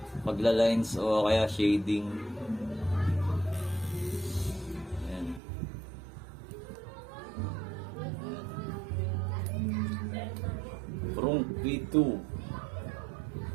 pagla-lines o kaya shading. Ayan. Prong V2.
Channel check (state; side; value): drops out; left; at 5.4 s